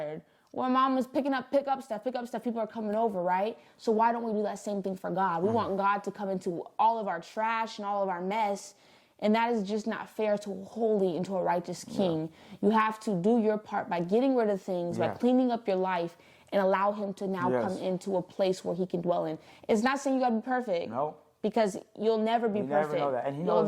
When mom was pick up stuff, people are coming over, right? So why don't we do that same thing for God? We want God to come into all of our trash and all of our mess. And that is just not fair to a holy and to a righteous king. You have to do your part by getting rid of things, by cleaning up your life, and allow him to now come into a place where he can dwell in. It's not saying you got to be perfect. No. Because you'll never be perfect. Never know that. And he knows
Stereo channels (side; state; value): both; identical; correlation 1.00